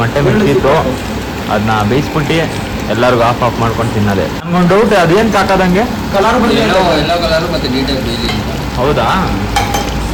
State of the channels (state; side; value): identical; both; correlation 1.00